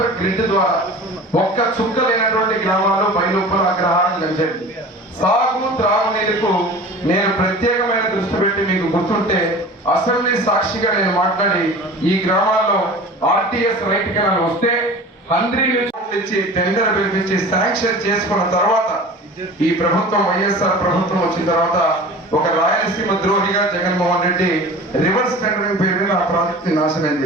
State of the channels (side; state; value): both; normal; correlation 0.39